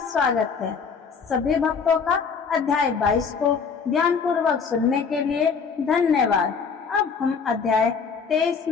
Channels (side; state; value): right; quieter; 5.8 dB